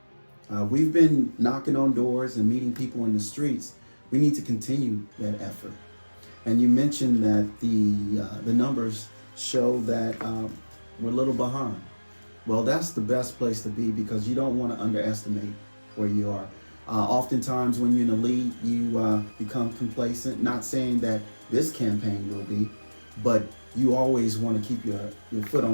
We've been knocking on doors and meeting people in the streets. We need to continue that effort. And you mentioned that the numbers show that we're a little behind. Well, that's the best place to be because you don't want to underestimate where you are. Oftentimes when you're in the lead, you become complacent. Not saying that this campaign will be, but you always want to keep your foot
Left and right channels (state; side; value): inverted; both; correlation -1.00